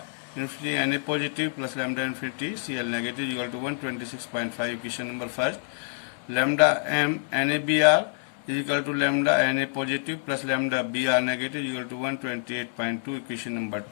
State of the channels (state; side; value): silent; right; digital silence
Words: infinity Na positive plus lambda infinity Cl negative is equal to 126.5. Equation number first. Lambda m NaBr is equal to lambda Na positive plus lambda Br negative is equal to 128.2. Equation number